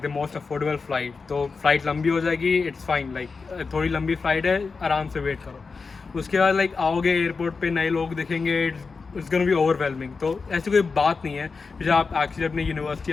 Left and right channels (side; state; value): right; quieter; 4.6 dB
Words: most affordable flight. तो फ्लाइट लंबी हो जाएगी, इट्स फाइन, थोड़ी लंबी फ़्लाइट है, आराम से वेट करो। उसके बाद आओगे एयरपोर्ट पे, नए लोग दिखेंगे, इट्स गोना बी ओवरवेलमिंग। तो ऐसी कोई बात नहीं है। जब आप एक्चुअली अपनी यूनिवर्सिटी